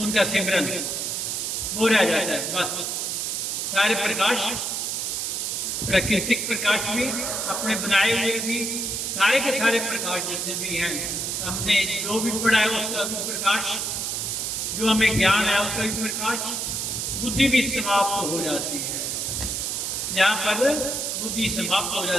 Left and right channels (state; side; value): noise; right; hiss, 1 dB below the sound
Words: सिमरन, वो रह जाता है। बस सारे प्रकाश, प्राकृतिक प्रकाश भी, अपने बनाए हुए भी, सारे के सारे प्रकाश जितने भी हैं, हमने जो भी पढ़ा है उसका भी प्रकाश, जो हमें ज्ञान है उसका भी प्रकाश, बुद्धि भी समाप्त हो जाती है। जहाँ पर बुद्धि समाप्त हो